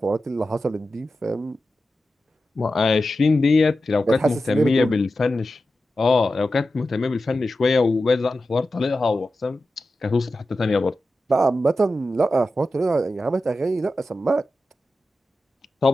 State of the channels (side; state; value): both; normal; correlation 0.92